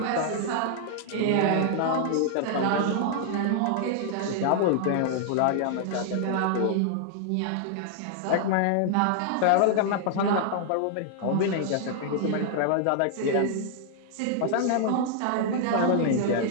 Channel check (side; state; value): both; different; correlation 0.00